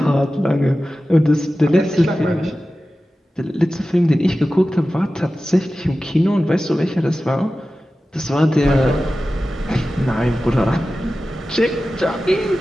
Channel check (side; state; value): both; normal; correlation 0.95